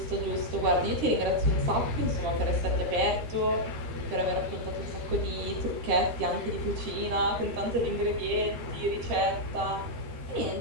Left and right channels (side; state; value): left; late; 13 ms